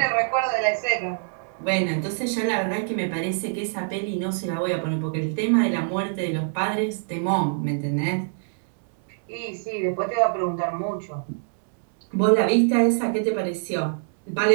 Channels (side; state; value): left; silent; digital silence